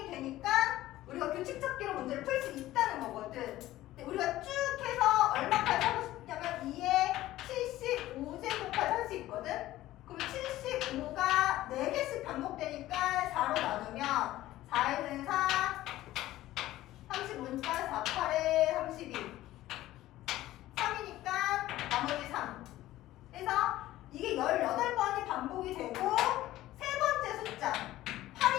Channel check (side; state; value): right; quieter; 15.4 dB